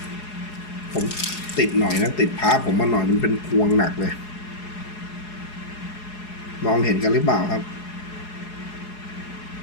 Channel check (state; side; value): late; right; 4.8 ms